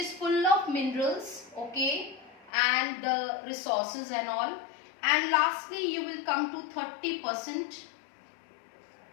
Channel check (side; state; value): right; drops out; at 2.5 s